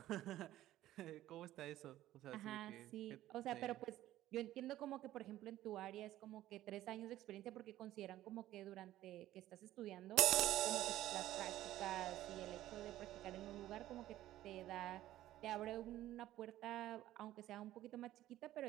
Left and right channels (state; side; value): quieter; left; 14.2 dB